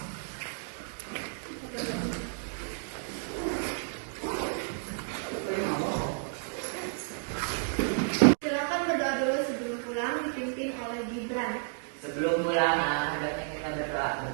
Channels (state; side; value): silent; left; 57 dB below the other